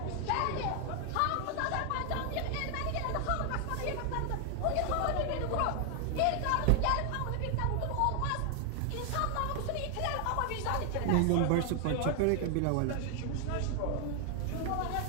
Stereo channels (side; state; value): both; different; correlation 0.00